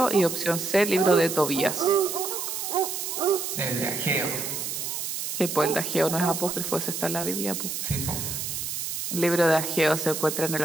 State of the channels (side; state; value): right; noise; hiss, 4 dB below the sound